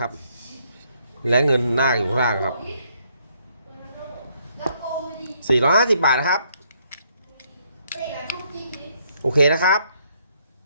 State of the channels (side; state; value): both; inverted; correlation -0.71